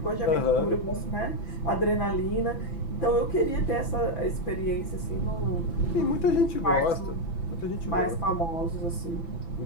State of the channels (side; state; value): right; late; 6.0 ms